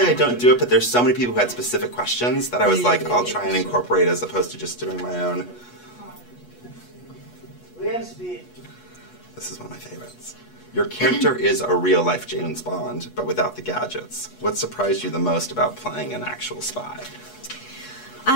I don't do it, but there's so many people who had specific questions that I was like, I'll try and incorporate as opposed to just doing my own. This is one of my favorites. Your character is a real-life James Bond, but without the gadgets. What surprised you the most about playing an actual spy?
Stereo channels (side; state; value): right; late; 8.3 ms